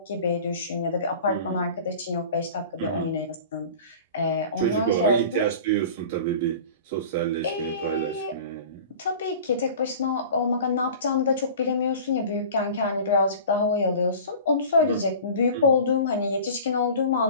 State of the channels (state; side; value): inverted; both; correlation -0.39